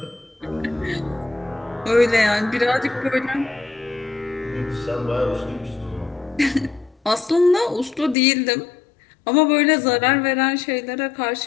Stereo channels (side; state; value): right; drops out; at 8.2 s